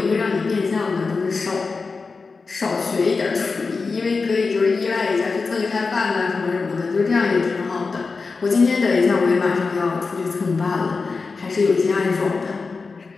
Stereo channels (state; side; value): quieter; right; 4.4 dB